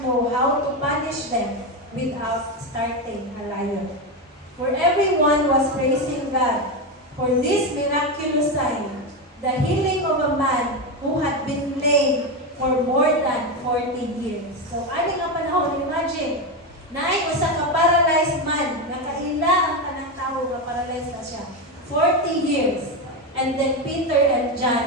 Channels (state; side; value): normal; both; correlation 0.13